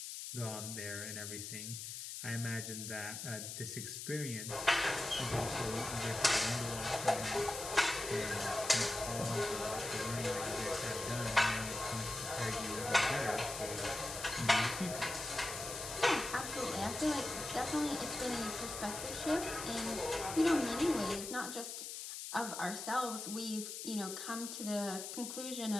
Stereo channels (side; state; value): left; noise; hiss, 7 dB below the sound